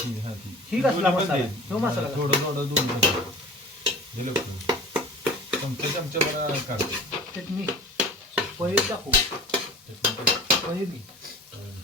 हा ती ही कसला मसाला तो मसाला थोडं थोडं दोन दिलं चमचे मला काढ चटणी पनीर टाकू पनीर घे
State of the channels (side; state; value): both; normal; correlation 0.41